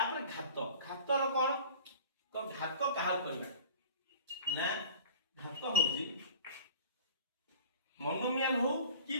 घात रो कोन तो घात काहा करबा ना घात होजी मोनोमियल हो कि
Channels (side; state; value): both; inverted; correlation -0.43